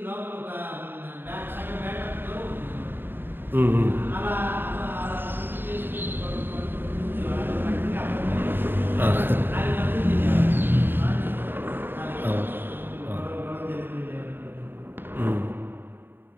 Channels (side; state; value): left; late; 0.098 ms